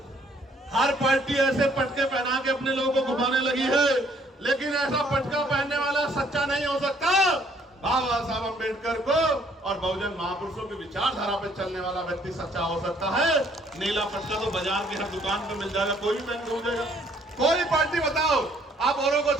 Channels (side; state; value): both; normal; correlation 0.63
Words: हर पार्टी ऐसे पटके पहना के अपने लोगों को घुमाने लगी है, लेकिन ऐसा पटका पहनने वाला सच्चा नहीं हो सकता। बाबा साहब अम्बेडकर को और बहुजन महापुरुषों की विचारधारा पे चलने वाला व्यक्ति सच्चा हो सकता है। नीला पटका तो बाजार की हर दुकान पे मिल जाएगा, कोई भी पहन के हो जाएगा। कोई पार्टी बताओ, आप औरों को